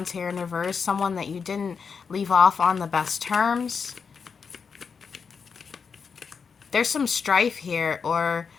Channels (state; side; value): quieter; right; 5.8 dB